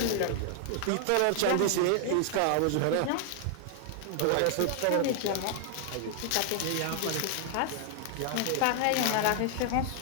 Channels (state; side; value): different; both; correlation 0.00